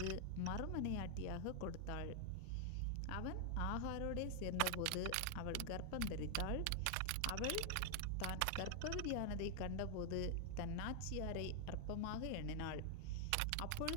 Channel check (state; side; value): different; both; correlation 0.00